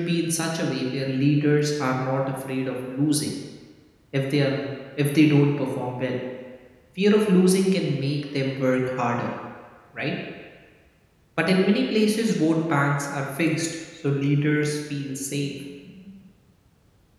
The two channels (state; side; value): identical; both; correlation 1.00